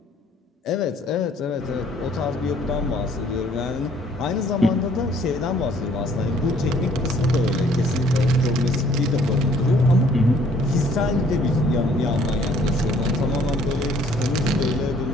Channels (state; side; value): normal; both; correlation 0.60